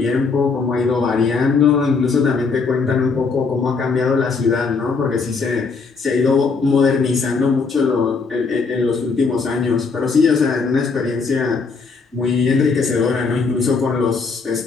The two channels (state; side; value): quieter; right; 4.7 dB